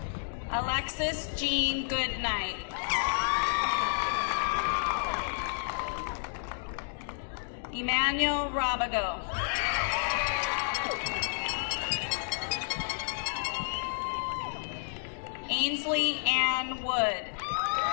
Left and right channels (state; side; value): silent; right; digital silence